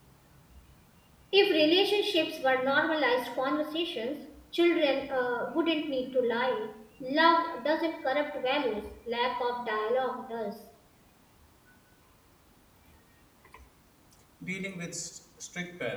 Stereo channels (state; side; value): identical; both; correlation 1.00